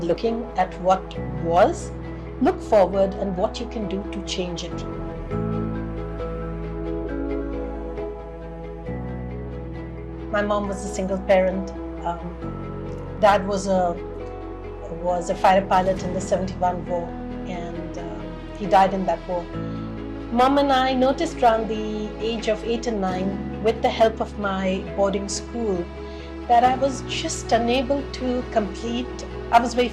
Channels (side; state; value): both; identical; correlation 1.00